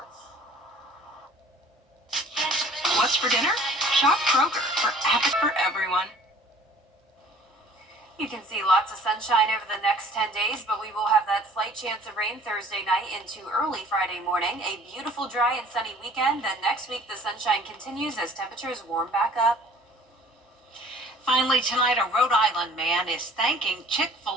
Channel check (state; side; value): normal; both; correlation 0.51